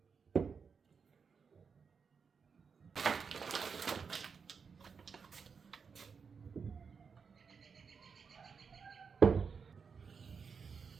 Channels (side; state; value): left; quieter; 5.8 dB